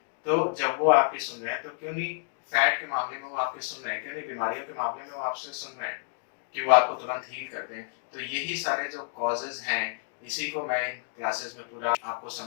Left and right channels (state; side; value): silent; right; digital silence